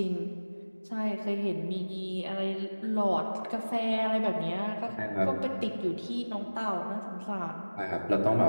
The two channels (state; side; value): inverted; both; correlation -1.00